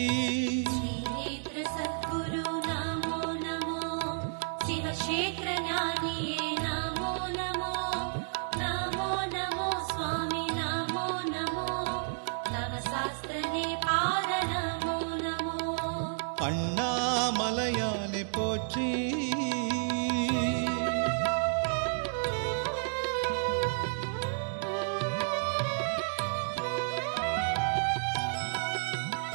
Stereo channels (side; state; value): left; silent; digital silence